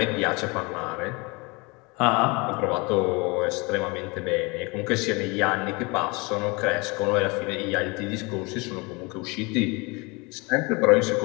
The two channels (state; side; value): quieter; right; 27.4 dB